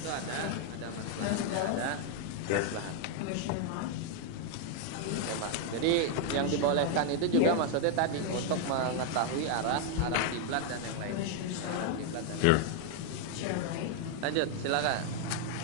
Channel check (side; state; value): both; different; correlation 0.00